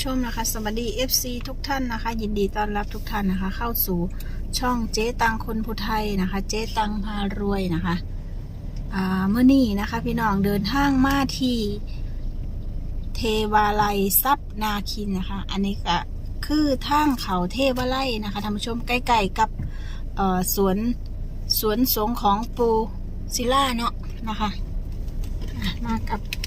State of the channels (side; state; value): both; identical; correlation 1.00